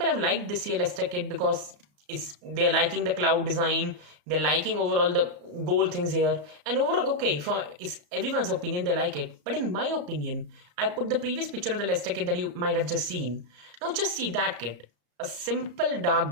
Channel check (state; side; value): late; left; 34 ms